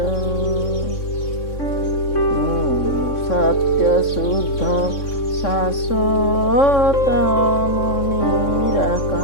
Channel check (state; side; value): late; right; 3.6 ms